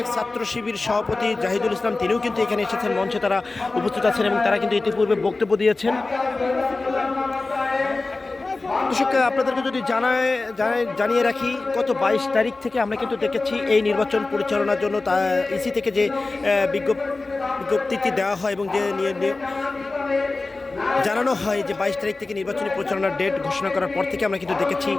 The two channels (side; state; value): right; quieter; 3.4 dB